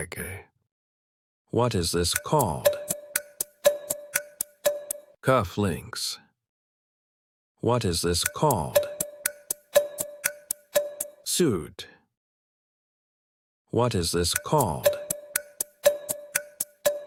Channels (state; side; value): identical; both; correlation 1.00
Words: What is this called? Cufflinks. What is this called? Suit. What is this called?